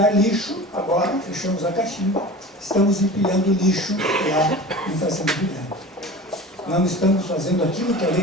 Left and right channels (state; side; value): normal; both; correlation 0.36